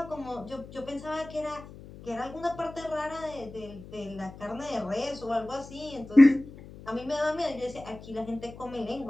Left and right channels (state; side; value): noise; left; hum, 16 dB below the sound